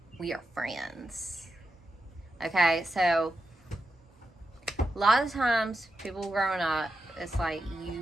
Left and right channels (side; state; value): both; normal; correlation 0.88